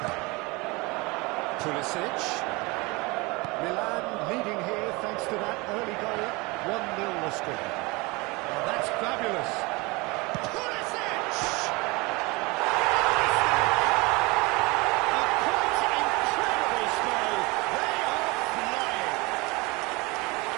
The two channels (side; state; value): left; quieter; 25.3 dB